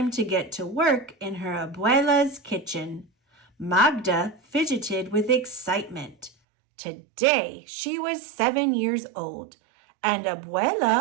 to get to work in her abuela's kitchen. Magda fidgeted with excitement. Today she was 7 years old, and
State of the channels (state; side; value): drops out; left; at 6.3 s